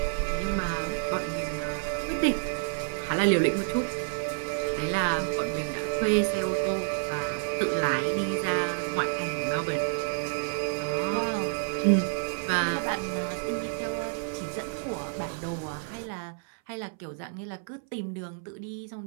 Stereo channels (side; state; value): left; silent; 58 dB below the other